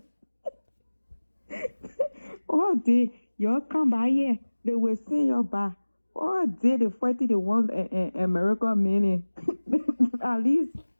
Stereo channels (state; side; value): inverted; both; correlation -1.00